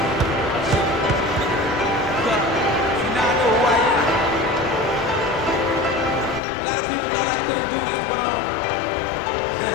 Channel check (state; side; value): drops out; right; at 6.4 s